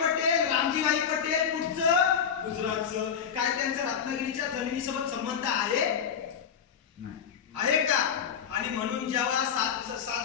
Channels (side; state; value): right; quieter; 7.6 dB